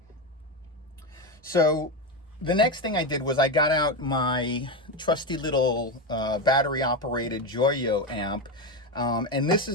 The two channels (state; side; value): normal; both; correlation 0.14